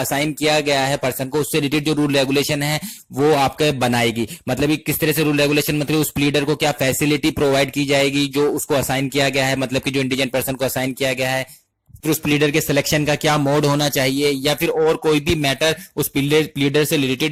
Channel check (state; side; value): identical; both; correlation 1.00